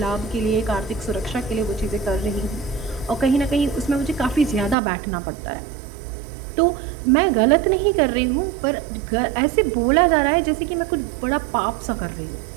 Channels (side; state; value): left; drops out; at 4.8 s